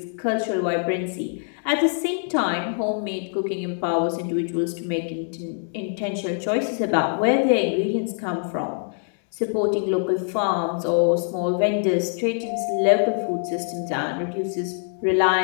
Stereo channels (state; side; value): silent; right; 62 dB below the other